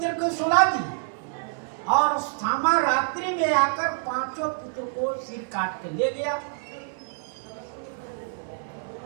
को सुला दिए और अश्वत्थामा रात्रि में आकर 5 पुत्र को सिर काट के ले गया।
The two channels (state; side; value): silent; left; 60 dB below the other